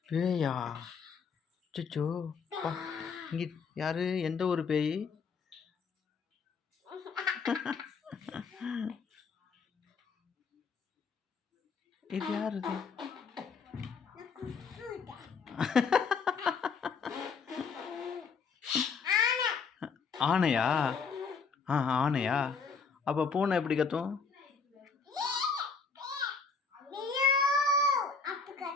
பேயா? அச்சச்சோ பா. இங்கே யார்? எந்த ஒரு பேய்? இது யார் இது? ஆனையா? ஆனையா? அப்போ பூனை எப்படி கத்தும்?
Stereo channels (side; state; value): right; quieter; 5.2 dB